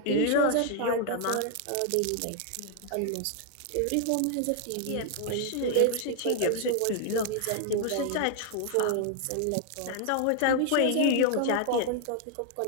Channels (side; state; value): both; different; correlation 0.00